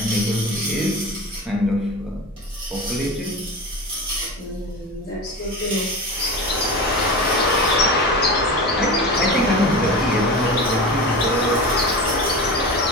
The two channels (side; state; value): both; normal; correlation 0.28